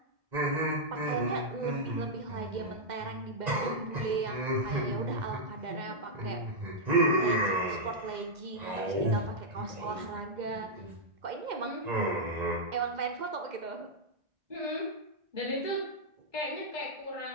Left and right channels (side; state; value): left; late; 2.1 ms